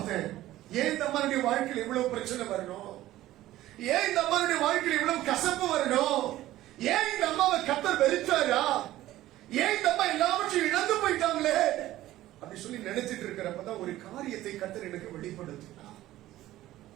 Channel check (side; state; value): left; quieter; 15.1 dB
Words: ஏன் இந்த அம்மாவுடைய வாழ்க்கையில் இவ்வளவு பிரச்சனை வரணும்? ஏன் இந்த அம்மாவுடைய வாழ்க்கையில் இவ்வளவு கசப்பு வரணும்? ஏன் இந்த அம்மாவை கர்த்தர் வெறுத்தாரா? ஏன் இந்த அம்மா எல்லாவற்றையும் இழந்து போயிட்டாங்களே அப்படி சொல்லி நினைச்சிட்டு இருக்கிறப்பதான் ஒரு காரியத்தை கர்த்தர் எனக்கு வெளிப்படுத்தினார்.